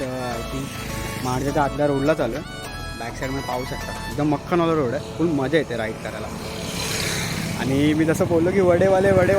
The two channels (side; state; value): both; identical; correlation 1.00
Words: आय थिंक महाडच्या आतल्या रोडला चालू आहे. बॅक साईडमध्ये पाहू शकता एकदम मक्खनवाला रोड आहे, फुल मजा येते राईड करायला. आणि मी जसं बोललो की वडेवाले